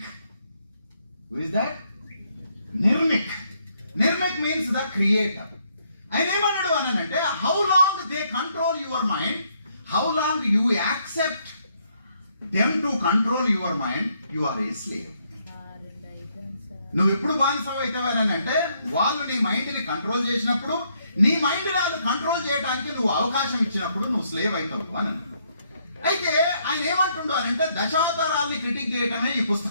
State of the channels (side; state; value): both; inverted; correlation -0.72